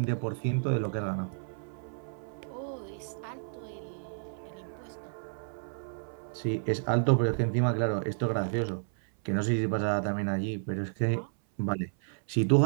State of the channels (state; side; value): silent; left; 57 dB below the other